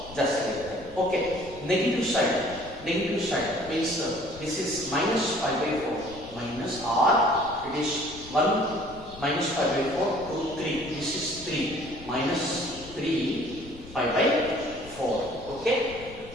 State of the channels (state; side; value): noise; left; rumble, 18 dB below the sound